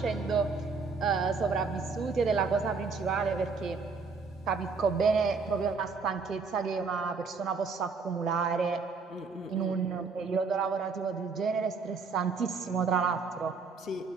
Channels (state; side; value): quieter; left; 4.7 dB